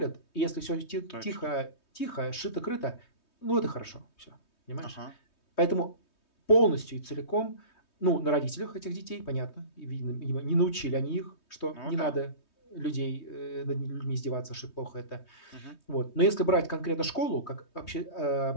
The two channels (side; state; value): right; late; 3.2 ms